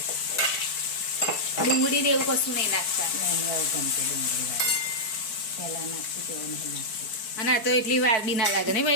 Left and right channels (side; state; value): right; late; 4.6 ms